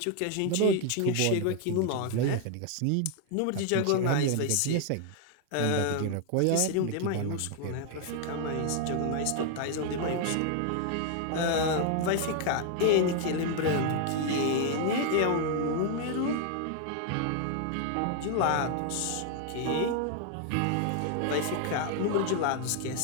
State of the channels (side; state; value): both; different; correlation 0.00